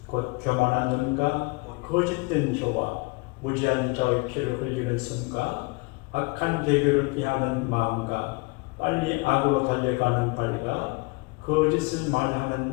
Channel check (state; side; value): quieter; right; 27.1 dB